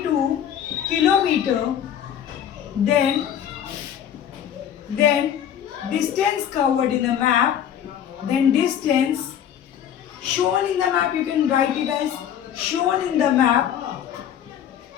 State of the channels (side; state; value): right; quieter; 9.6 dB